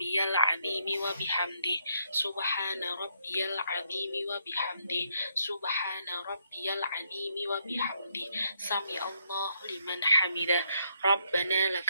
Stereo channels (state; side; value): inverted; both; correlation -0.74